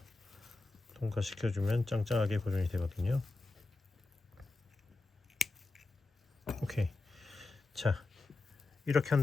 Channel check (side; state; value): right; quieter; 3.3 dB